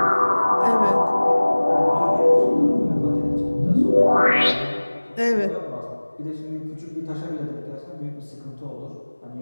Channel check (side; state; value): both; inverted; correlation -1.00